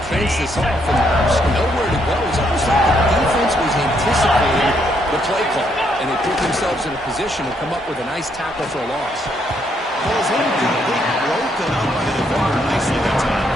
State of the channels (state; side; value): normal; both; correlation 0.73